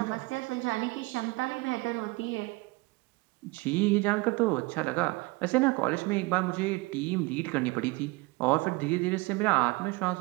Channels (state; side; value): quieter; left; 23.9 dB